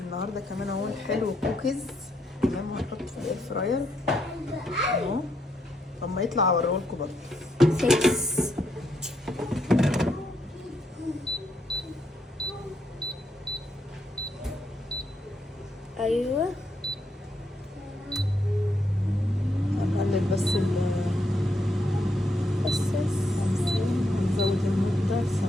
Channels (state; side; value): normal; both; correlation 0.77